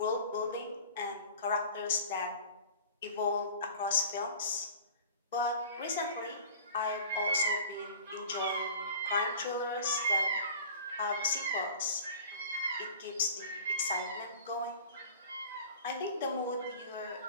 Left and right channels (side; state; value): both; inverted; correlation -0.41